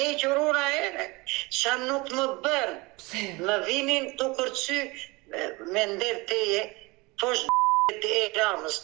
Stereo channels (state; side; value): quieter; left; 24.5 dB